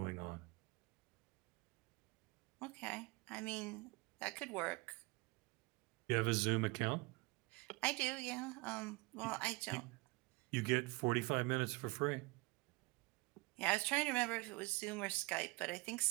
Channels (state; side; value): quieter; left; 24.9 dB